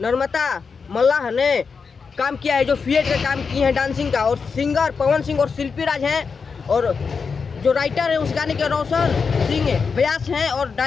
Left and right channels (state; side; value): quieter; right; 5.4 dB